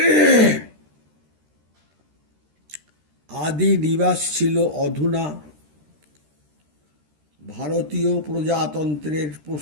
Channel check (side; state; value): left; late; 13 ms